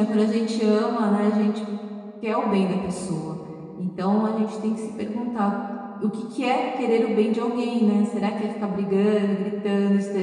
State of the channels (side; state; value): both; identical; correlation 1.00